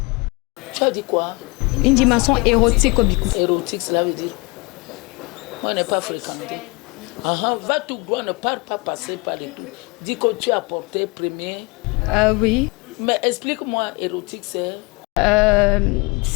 Tu as dit quoi? Une dimension érotique au Bikoutsi. Érotique, cela veut dire... Moi, je n'ai pas fréquenté. Va tout droit, ne parle pas passer par les tout. Dis que tu as apporté premier. Oui. Mais explique-moi, érotique, c'est...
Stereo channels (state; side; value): quieter; right; 28.0 dB